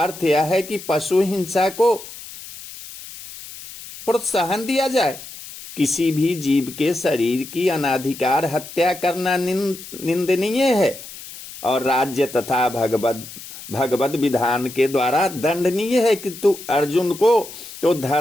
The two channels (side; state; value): left; noise; hiss, 14 dB below the sound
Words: अर्थ यह है कि पशु हिंसा को प्रोत्साहन दिया जाए। किसी भी जीव के शरीर की अनाधिकार हत्या करना निंदनीय है और राज्य तथा भगवत विधान के द्वारा दंडनीय है। किंतु अर्जुन को तो